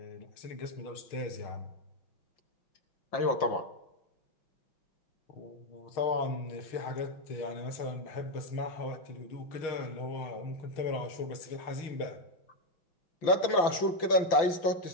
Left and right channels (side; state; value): right; late; 5.9 ms